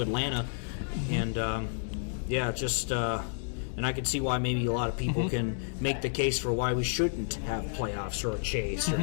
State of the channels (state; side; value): silent; right; digital silence